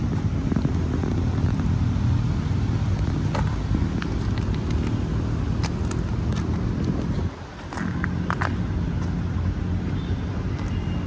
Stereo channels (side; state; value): both; identical; correlation 1.00